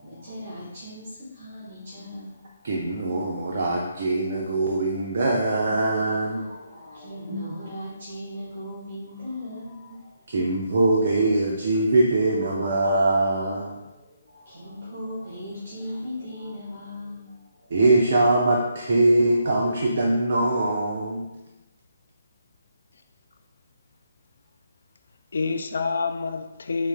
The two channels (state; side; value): inverted; both; correlation -0.78